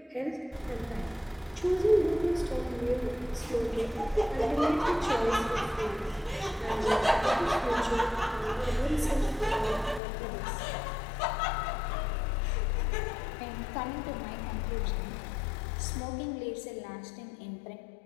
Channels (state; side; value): drops out; right; at 10.0 s